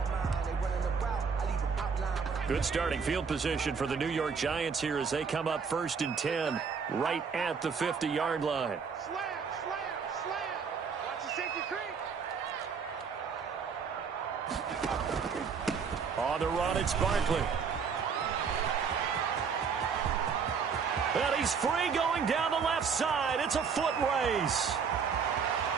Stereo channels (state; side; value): quieter; left; 6.0 dB